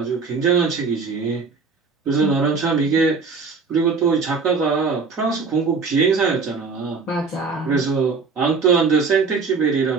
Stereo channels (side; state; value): left; quieter; 4.7 dB